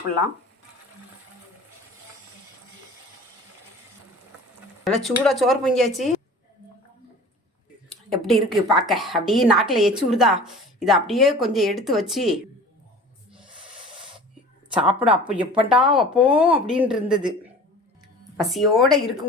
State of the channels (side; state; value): both; normal; correlation 0.42